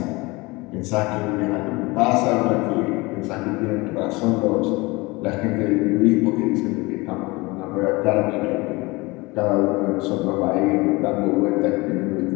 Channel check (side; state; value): right; quieter; 23.7 dB